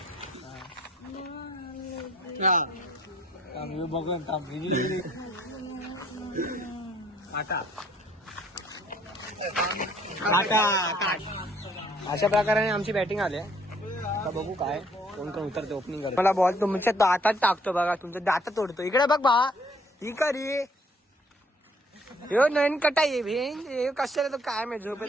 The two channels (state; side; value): normal; both; correlation 0.62